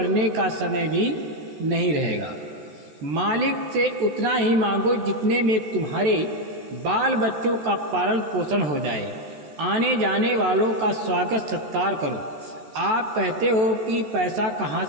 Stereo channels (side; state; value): left; late; 14 ms